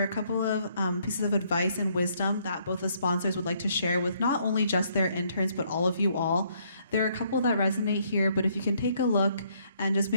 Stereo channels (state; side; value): inverted; both; correlation -0.69